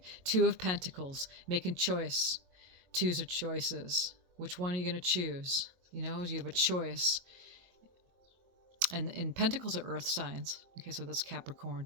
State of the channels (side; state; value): left; late; 22 ms